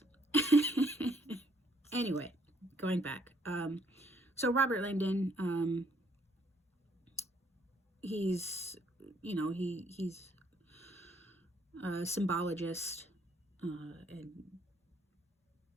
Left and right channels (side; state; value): both; normal; correlation 0.67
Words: Anyway, going back. So Robert Langdon, he's a symbologist, and